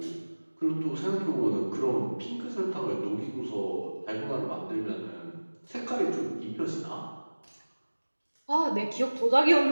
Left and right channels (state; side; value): inverted; both; correlation -1.00